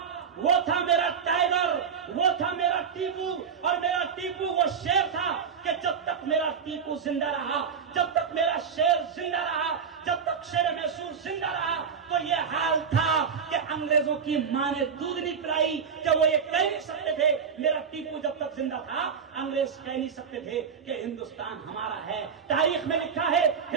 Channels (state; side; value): quieter; left; 6.6 dB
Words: था मेरा टाइगर, वो था मेरा टीपू। और मेरा टीपू वो शेर था कि जब तक मेरा टीपू जिंदा रहा, जब तक मेरा शेर जिंदा रहा, जब तक शेर मैसूर जिंदा रहा, तो ये हाल था कि अंग्रेजों की मां ने दूध नहीं पिलाई कि वो ये कह नहीं सकते थे। मेरा टीपू जब तक जिंदा था, अंग्रेज कह नहीं सकते थे कि हिंदुस्तान हमारा है। तारीख में लिखा है,